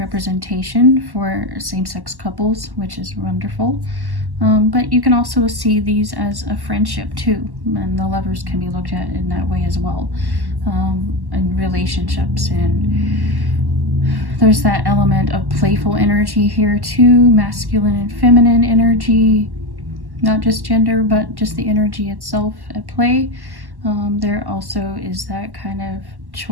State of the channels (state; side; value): late; left; 1.1 ms